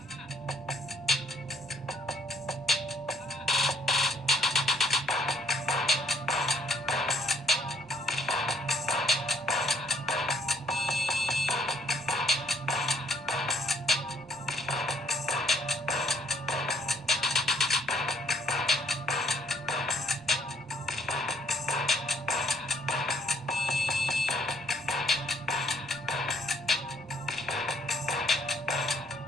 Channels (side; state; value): both; normal; correlation 0.65